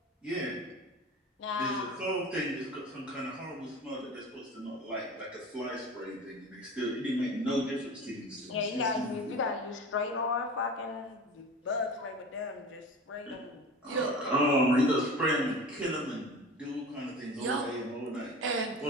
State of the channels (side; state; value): both; normal; correlation 0.35